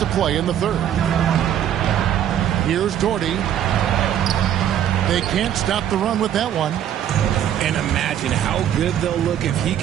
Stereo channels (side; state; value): left; quieter; 10.4 dB